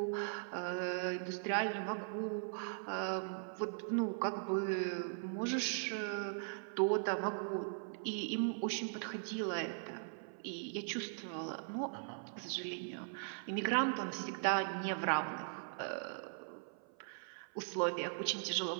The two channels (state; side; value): silent; left; 51 dB below the other